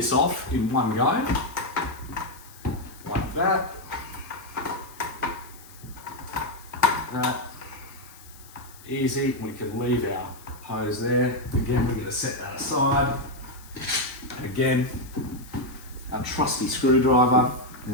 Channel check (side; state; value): left; noise; hiss, 21 dB below the sound